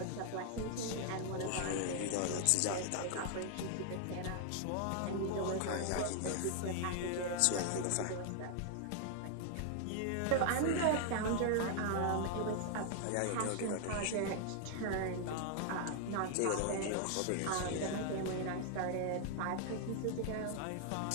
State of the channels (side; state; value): both; different; correlation 0.00